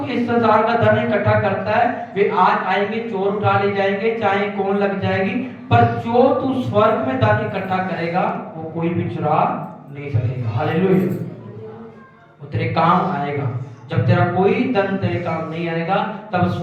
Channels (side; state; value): both; identical; correlation 1.00